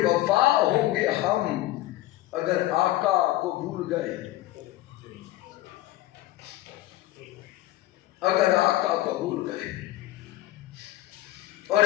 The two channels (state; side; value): quieter; right; 16.1 dB